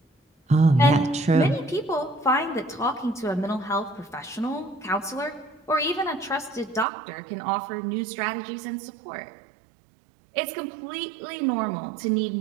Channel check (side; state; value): left; drops out; at 6.9 s